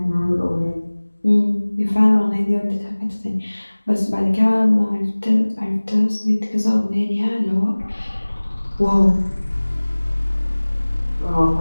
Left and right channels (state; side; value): inverted; both; correlation -1.00